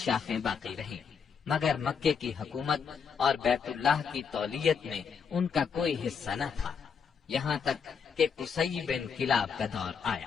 باقی رہیں، مگر مکے کی حکومت اور بیت اللہ کی تولیت میں ان کا کوئی حصہ نہ تھا، یہاں تک کہ قصی بن کلاب کا دور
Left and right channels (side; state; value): right; quieter; 6.4 dB